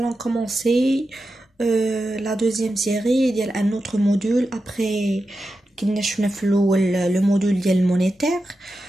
commencer la deuxième série ديال un autre module après كنا شفنا في الأول le module ديال monétaire.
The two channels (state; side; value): normal; both; correlation 0.90